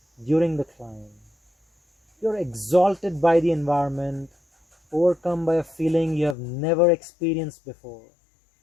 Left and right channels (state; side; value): drops out; right; at 6.4 s